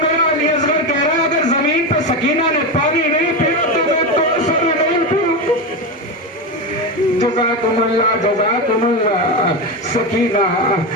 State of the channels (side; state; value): both; normal; correlation 0.16